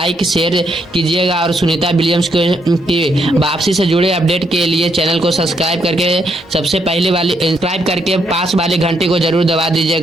शेयर कीजिएगा और सुनीता विलियम्स की वापसी से जुड़े अपडेट के लिए चैनल को सब्सक्राइब करके सबसे पहले वाली सब्सक्राइब करके पास वाले घंटे को जरूर दबा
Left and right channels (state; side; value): normal; both; correlation 0.75